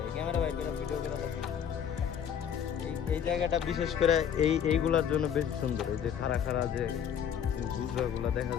ক্যামেরা বাইর করে ভিডিও করে দেখেন, এই এই জায়গাটা বিশেষ করে এইগুলার জন্য বেশি সুন্দর, এই যে খাড়া খাড়া যে গুজরাগুলা দেখা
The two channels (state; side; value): quieter; right; 8.5 dB